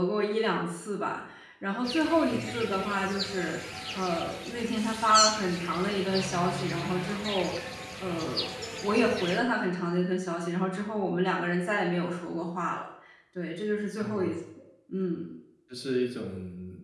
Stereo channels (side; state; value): both; identical; correlation 1.00